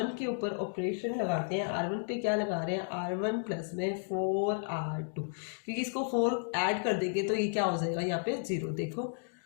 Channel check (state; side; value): silent; right; digital silence